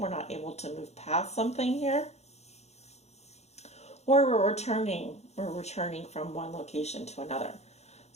not able to move past something here. Or we're returning from one location to another.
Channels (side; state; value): right; late; 0.32 ms